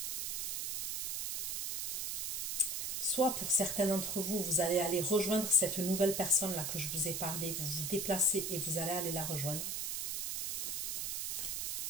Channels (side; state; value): right; noise; hiss, 1 dB below the sound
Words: Soit pour certains d'entre vous, vous allez aller rejoindre cette nouvelle personne-là que je vous ai parlé. Vous vous déplacez et vous allez aller la rejoindre.